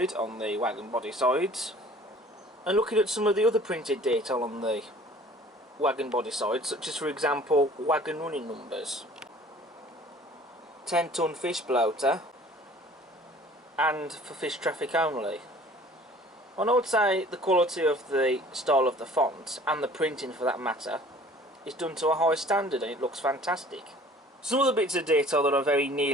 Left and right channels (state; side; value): normal; both; correlation 0.50